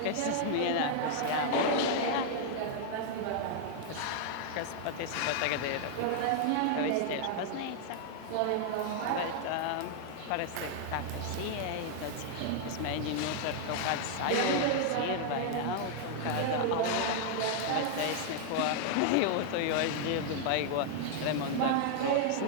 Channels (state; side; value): different; both; correlation -0.01